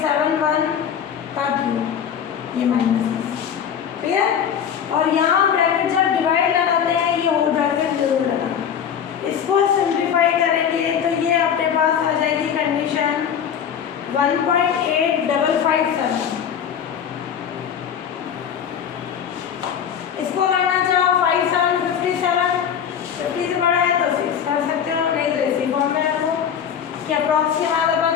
का क्यूब, ये माइनस। क्लियर? और यहाँ ब्रैकेट जब डिवाइड लगाते हैं ये होल ब्रैकेट जरूर लगाना। इसको सिंप्लीफाई करेंगे तो ये अपने पास आ जाएगी कंडीशन 1.8557। इसको करना चाहो 5757, 50 से बड़ा है तो 6 कर सकते हो, नहीं तो इसी फॉर्म में रखो कि अप्रॉक्सीमेट अपन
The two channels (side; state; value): right; quieter; 8.2 dB